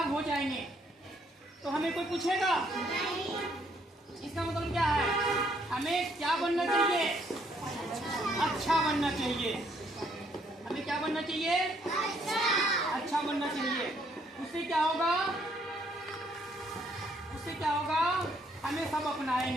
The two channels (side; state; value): both; normal; correlation 0.69